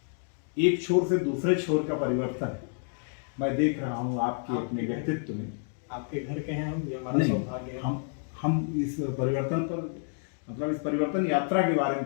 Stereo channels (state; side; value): silent; right; 58 dB below the other